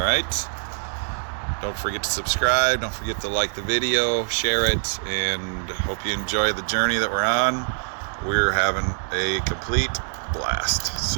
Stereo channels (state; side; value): silent; left; 63 dB below the other